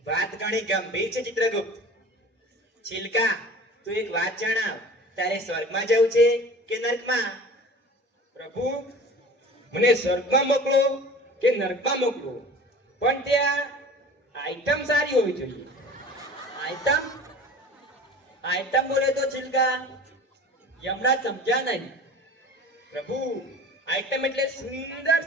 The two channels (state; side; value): normal; both; correlation 0.40